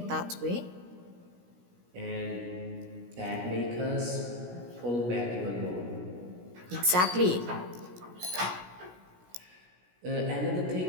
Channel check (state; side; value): late; left; 17 ms